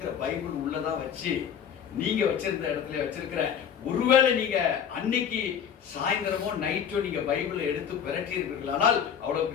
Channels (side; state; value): right; quieter; 8.1 dB